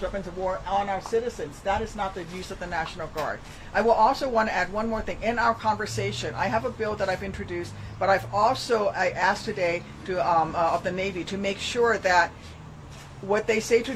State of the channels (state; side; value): identical; both; correlation 1.00